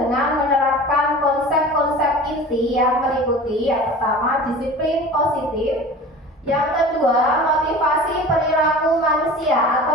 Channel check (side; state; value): both; normal; correlation 0.38